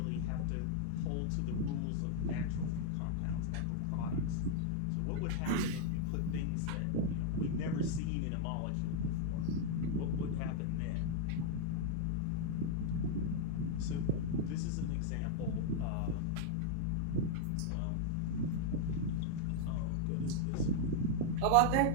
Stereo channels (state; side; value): different; both; correlation -0.01